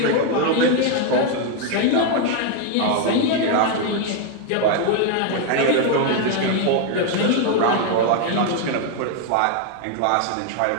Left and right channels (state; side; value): different; both; correlation 0.01